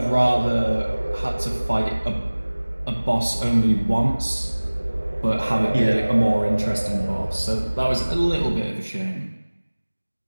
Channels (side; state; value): both; inverted; correlation -1.00